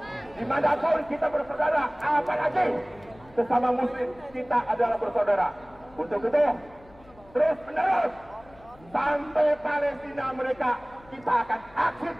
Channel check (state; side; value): noise; left; hum, 25 dB below the sound